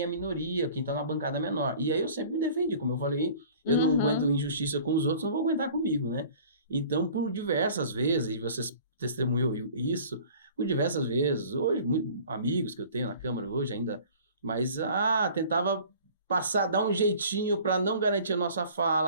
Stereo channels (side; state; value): both; inverted; correlation -0.47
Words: é minoria, quem está na bancada menor. E aí eu sempre me defendi, como eu falei, eu não aguento injustiça com os outros, não vou aguentar comigo, né? Então, por diversas vezes, e vocês testemunhou isso, por diversas vezes, hoje, amigos que eu tenho na Câmara hoje ainda, mas tentava passar, dar um jeitinho para não garantir a nossa